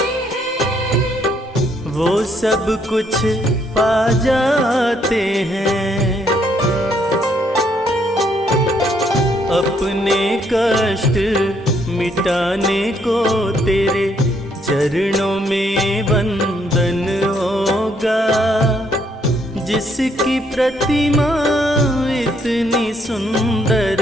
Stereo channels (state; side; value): normal; both; correlation 0.71